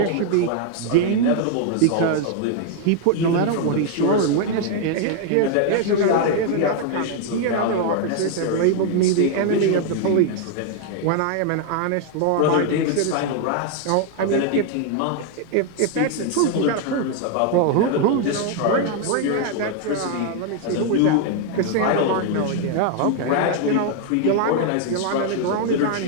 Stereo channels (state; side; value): different; both; correlation 0.00